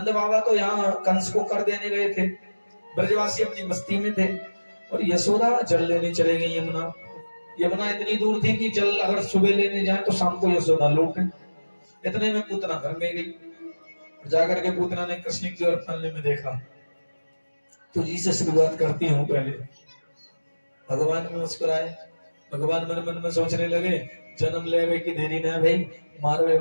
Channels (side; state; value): both; inverted; correlation -1.00